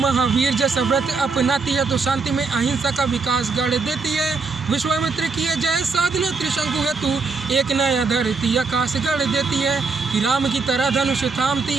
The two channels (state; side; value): quieter; left; 4.4 dB